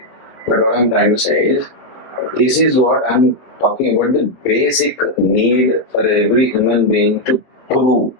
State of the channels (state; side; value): late; right; 23 ms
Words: But what I'm trying to say is, this is what I'm talking about, the basic need for every human being to prove.